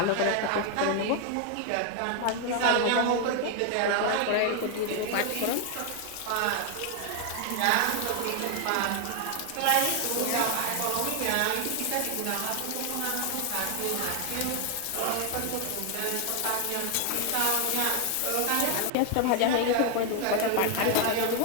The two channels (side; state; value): both; different; correlation 0.00